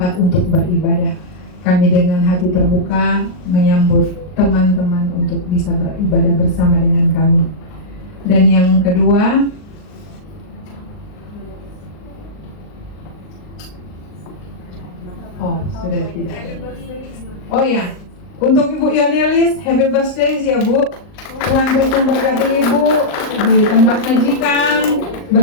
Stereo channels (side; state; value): right; late; 39 ms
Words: untuk beribadah, kami dengan hati terbuka menyambut teman-teman untuk bisa beribadah bersama dengan kami. Dan yang kedua, oh sudah tidak. Oh ya, untuk Ibu Yonelis, happy birthday ya Bu. Tuhan terus memberkati Ibu di tempat majikan